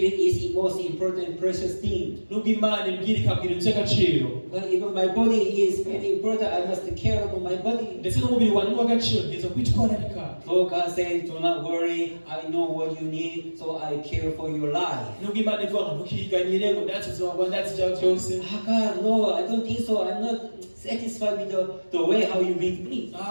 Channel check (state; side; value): inverted; both; correlation -1.00